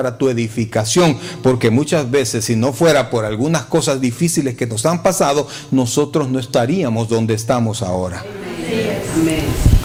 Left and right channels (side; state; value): both; identical; correlation 1.00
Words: tu edificación. Porque muchas veces, si no fuera por algunas cosas difíciles que nos han pasado, nosotros no estaríamos donde estamos ahora.